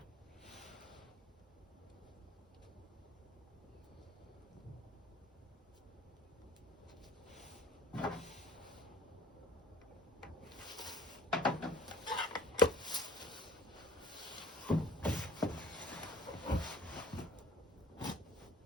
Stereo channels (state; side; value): normal; both; correlation 0.47